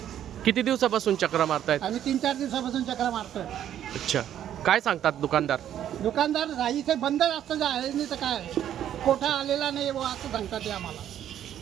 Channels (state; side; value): quieter; left; 10.7 dB